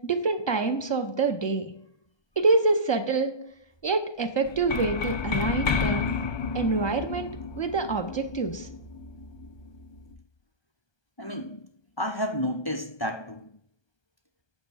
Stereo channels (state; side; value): late; right; 1.2 ms